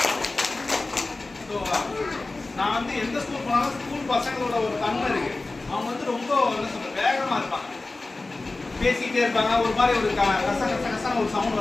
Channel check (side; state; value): right; quieter; 3.3 dB